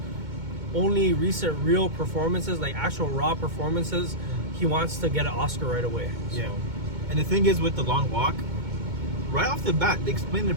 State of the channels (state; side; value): late; left; 2.2 ms